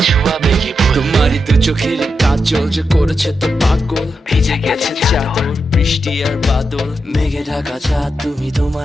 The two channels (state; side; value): normal; both; correlation 0.86